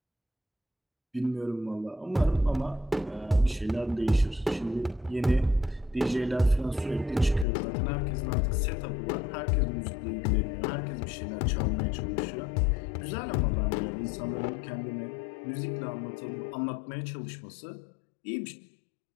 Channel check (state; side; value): drops out; right; at 7.5 s